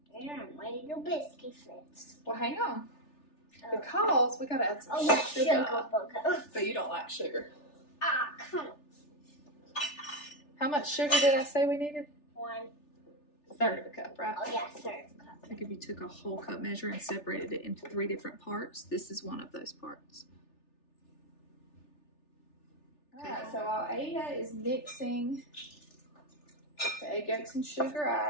Yeah, I'm ready to biscuit fix. Well, hang on. Because we gotta add some sugar. But you don't like sugar. Ah, come on. How much sugar did I say we needed? 1/3 of a cup, right? Oh, yeah, 1/3 cup. I think if you took a whole cup measure and separated it into 3 different parts, this is one of those parts. Alright, so while Ada is mixing the egg yolks and sugar,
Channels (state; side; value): late; right; 3.4 ms